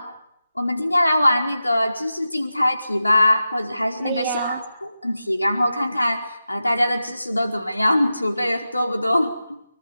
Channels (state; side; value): inverted; both; correlation -0.92